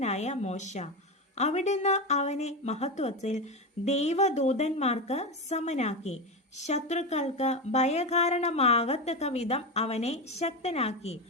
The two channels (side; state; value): both; normal; correlation 0.16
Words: മോശ. അവിടുന്ന് അവനെ മഹത്വത്തിൽ ദൈവദൂതന്മാർക്ക് സമനാക്കി. ശത്രുക്കൾക്ക് ഭയകാരണമാകത്തക്ക വിധം അവനെ ശക്തനാക്കി.